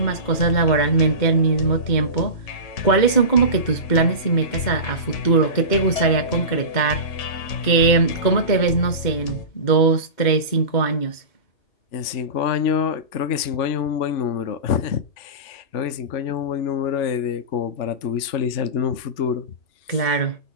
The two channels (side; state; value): right; late; 2.1 ms